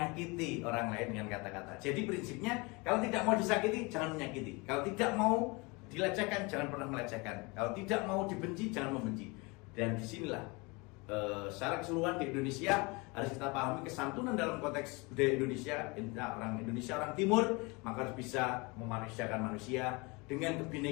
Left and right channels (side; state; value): right; quieter; 27.1 dB